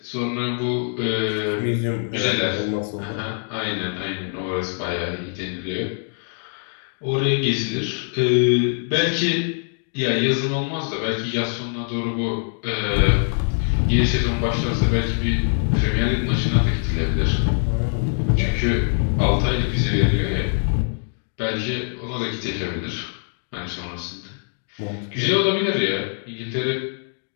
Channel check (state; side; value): silent; right; digital silence